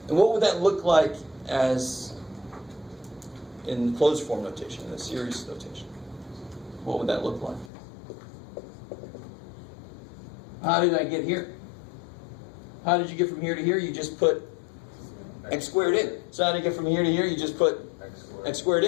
And what would that look like as in closed form notation, in a series notation? What would that look like? How did I get here? How did you get from here to here? You just put x squared in. So how did you get from here to here? You just put x squared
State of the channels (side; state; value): right; drops out; at 7.7 s